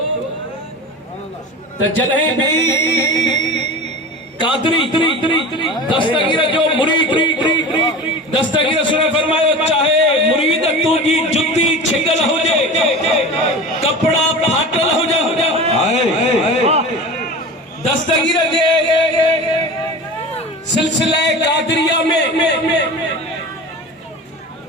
त जॾहिं बि कादरी दस्तगीर जो मुरीद दस्तगीर सुने फरमायो चाहे मुरीद तुंहिंजी जुती छिगल हुजे कपड़ा फाटल हुजे दस्तगीर जे सिलसिले कादरिया में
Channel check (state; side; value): normal; both; correlation 0.33